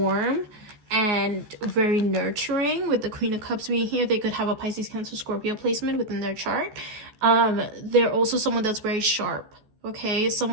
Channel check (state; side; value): late; left; 14 ms